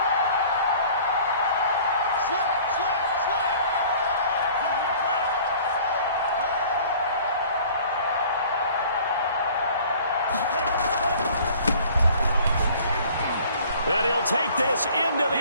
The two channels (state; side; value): inverted; both; correlation -0.50